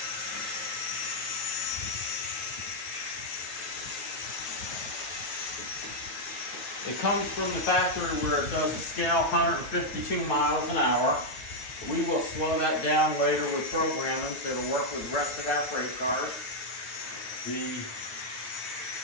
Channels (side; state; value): right; late; 9.3 ms